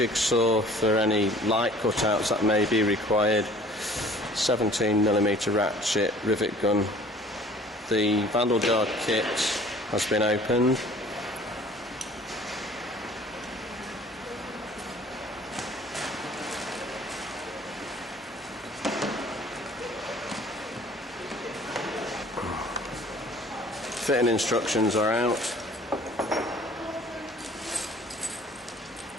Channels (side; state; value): both; normal; correlation 0.51